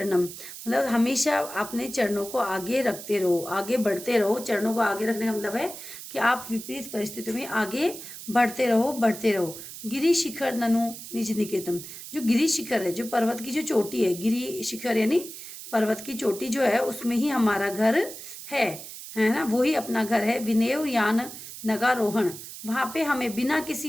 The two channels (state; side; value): noise; right; hiss, 12 dB below the sound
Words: मतलब हमेशा अपने चरणों को आगे रखते रहो, आगे बढ़ते रहो। चरणों को आगे रखने का मतलब है कि आप विपरीत परिस्थितियों में आगे बढ़ते रहो, बढ़ते रहो। गिरि शिखर ननु निज निकेतम, जो गिरि शिखर है, जो पर्वत की जो चोटी है, गिरि शिखर यानी पर्वत की चोटी जो है, उसमें ही हमारा घर है ना, वो ही अपना घर है। विनेव यान नगारोहण, वहां पे हमें बिना किसी